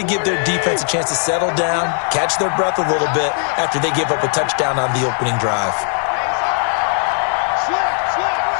give their defense a chance to settle down, catch their breath a little bit after they give up a touchdown on the opening drive.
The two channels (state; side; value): silent; right; 58 dB below the other